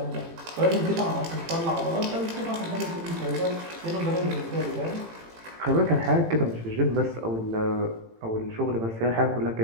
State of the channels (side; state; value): left; late; 18 ms